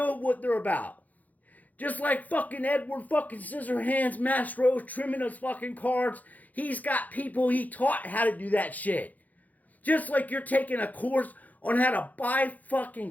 what they're about. Just like fucking Edward fucking Scissorhands Mastros trimming his fucking cards, he's got people he taught how to do that shit. Just like you're taking a course on how to buy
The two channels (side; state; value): right; late; 0.079 ms